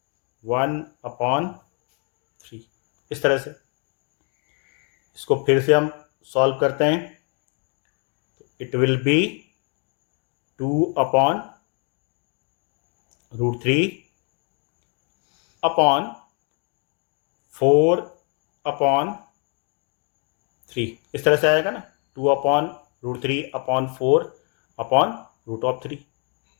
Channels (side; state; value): right; quieter; 38.7 dB